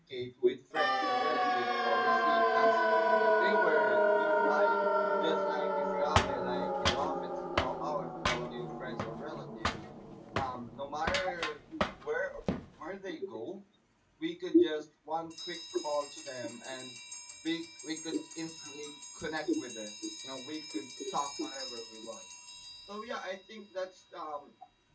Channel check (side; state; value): both; identical; correlation 1.00